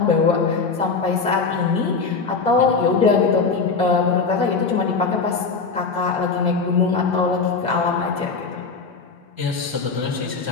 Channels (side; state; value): right; quieter; 4.7 dB